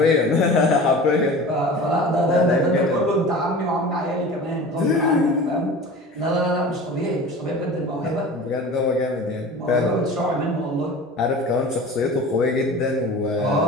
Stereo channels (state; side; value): normal; both; correlation 0.37